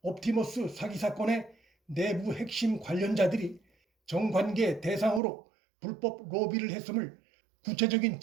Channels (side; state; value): left; drops out; at 5.2 s